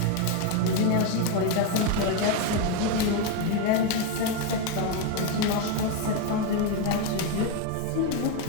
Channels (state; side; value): different; both; correlation 0.02